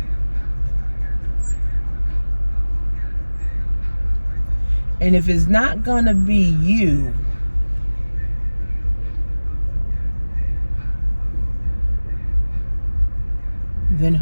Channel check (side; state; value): both; inverted; correlation -1.00